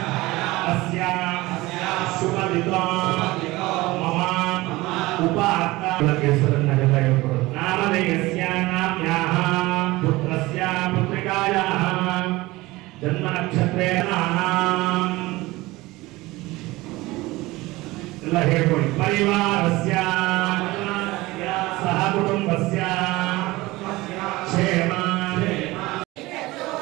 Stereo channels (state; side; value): quieter; left; 20.1 dB